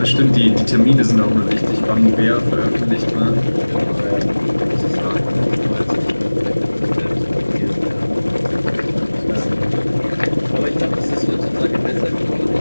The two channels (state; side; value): inverted; both; correlation -1.00